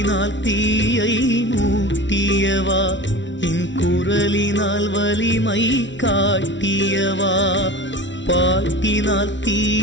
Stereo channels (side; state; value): right; late; 0.54 ms